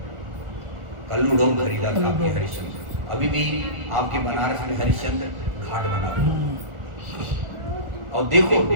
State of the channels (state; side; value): late; left; 1.4 ms